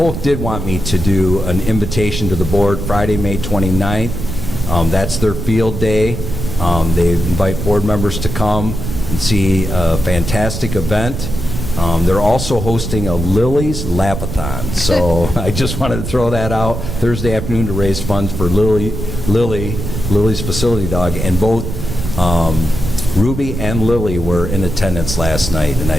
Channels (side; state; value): right; noise; rumble, 5 dB below the sound